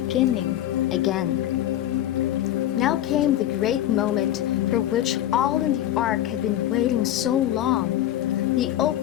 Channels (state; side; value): quieter; right; 12.6 dB